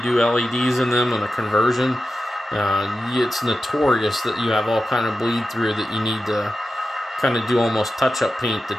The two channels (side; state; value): both; normal; correlation 0.92